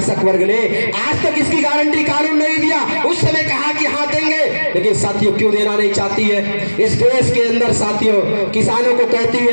वर्ग ने आज तक इसकी गारंटी कानून नहीं दिया। उस समय कहा कि हाँ देंगे, लेकिन साथियों क्यों देना नहीं चाहती है? इस देश के अंदर साथियों किसानों को कहती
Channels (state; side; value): inverted; both; correlation -1.00